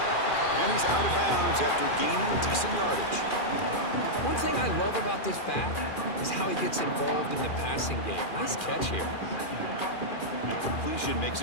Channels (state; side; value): late; right; 2.4 ms